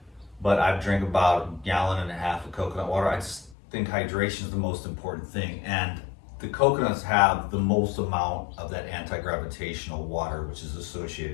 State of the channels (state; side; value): drops out; right; at 3.6 s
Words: but I've drank about 1.5 gallons of coconut water. I just think hydration is the most important thing, and the coconuts have the most amount of that anti-gravitational water, which is